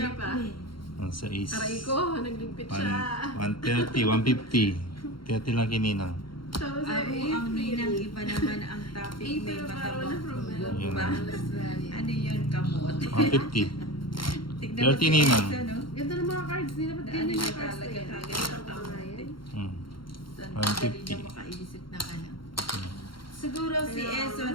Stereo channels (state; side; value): late; right; 0.73 ms